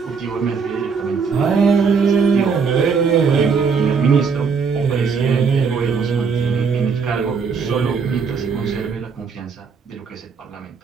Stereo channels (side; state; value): left; quieter; 5.6 dB